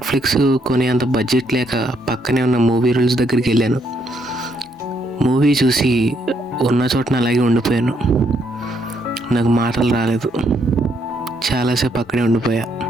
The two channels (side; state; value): both; normal; correlation 0.73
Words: కొనేంత బడ్జెట్ లేక పక్కనే ఉన్న మూవీ రూల్స్ దగ్గరికి వెళ్ళాను. మూవీ చూసి ఉన్న చోటన అలాగే ఉండిపోయాను. నాకు మాటలు రాలేదు. చాలాసేపు అక్కడే ఉండిపోయా.